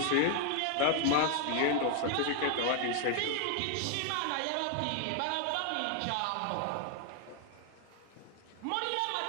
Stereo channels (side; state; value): both; different; correlation 0.00